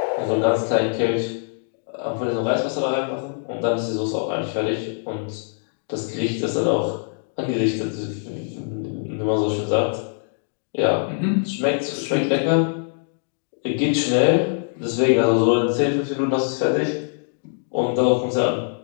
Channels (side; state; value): right; silent; digital silence